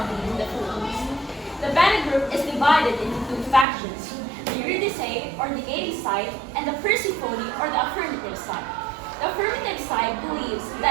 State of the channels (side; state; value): left; drops out; at 3.7 s